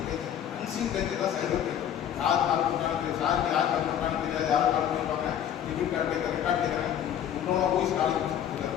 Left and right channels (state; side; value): quieter; right; 9.9 dB